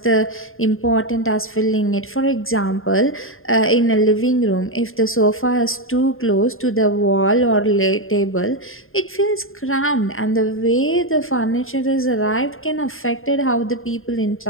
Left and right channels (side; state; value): right; late; 0.60 ms